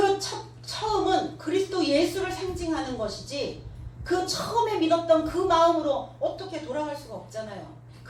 처음은 그리스도 예수를 상징하는 것이지 그 처음에 믿었던 그 마음으로 어떻게 돌아갈 수가 없잖아요.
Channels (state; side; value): identical; both; correlation 1.00